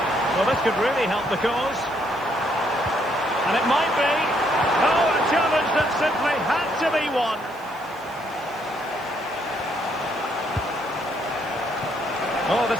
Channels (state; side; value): noise; right; hiss, 25 dB below the sound